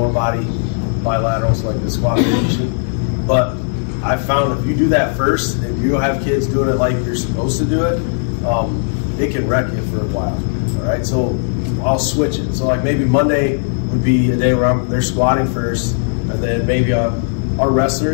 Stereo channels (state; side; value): silent; right; digital silence